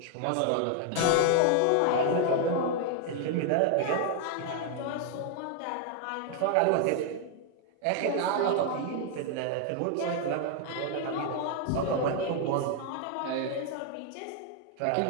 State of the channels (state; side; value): different; both; correlation 0.00